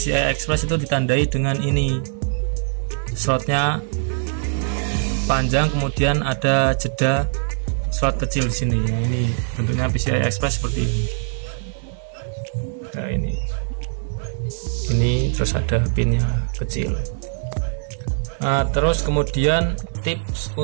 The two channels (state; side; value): silent; left; 60 dB below the other